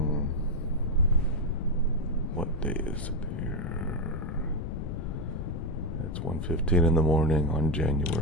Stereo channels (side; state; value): left; noise; rumble, 4 dB below the sound